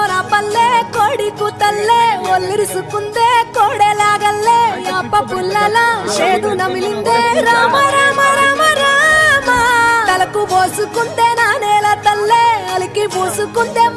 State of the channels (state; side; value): identical; both; correlation 1.00